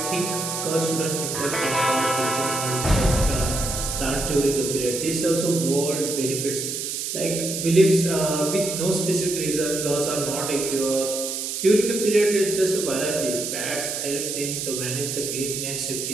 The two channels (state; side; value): noise; right; hiss, 4 dB below the sound